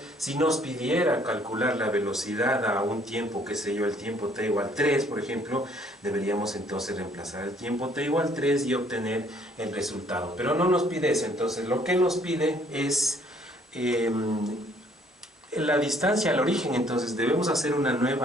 Si nos pidiera calcular la velocidad a un tiempo, qué sé yo, el tiempo t igual 3, por ejemplo, deberíamos entonces reemplazar el tiempo t igual 3 y obtener el resultado. Pero no nos pide eso, entonces lo que nos pide es la distancia al origen, entonces debemos hacer una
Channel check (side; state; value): both; normal; correlation 0.62